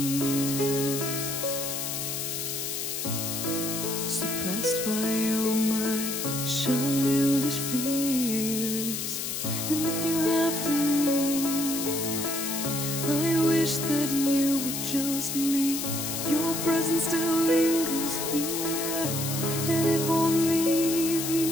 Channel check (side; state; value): left; noise; hiss, 3 dB below the sound